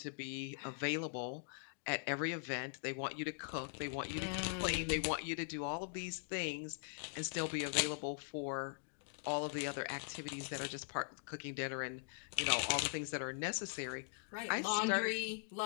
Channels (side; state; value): right; silent; digital silence